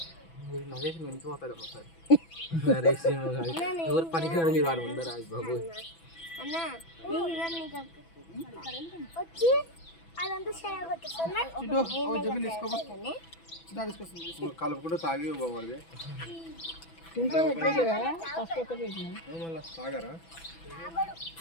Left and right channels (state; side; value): late; right; 6.0 ms